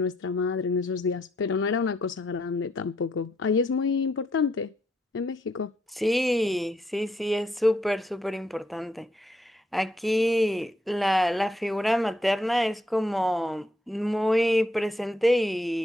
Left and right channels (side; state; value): both; normal; correlation 0.75